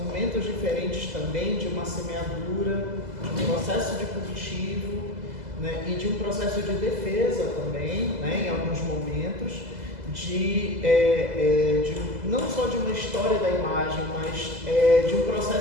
diferentes também de uma semeadura, de um processo de cultivo, né, e de um processo de defesa também, né, em alguns momentos, não só de uma história da imagem, mas de um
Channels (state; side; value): late; left; 2.0 ms